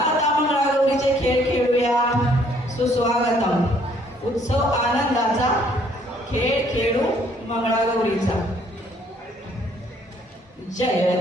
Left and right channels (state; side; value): normal; both; correlation 0.63